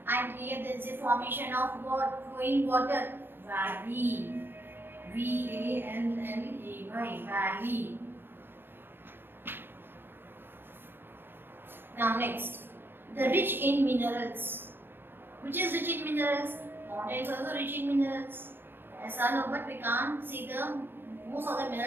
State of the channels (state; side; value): late; left; 0.10 ms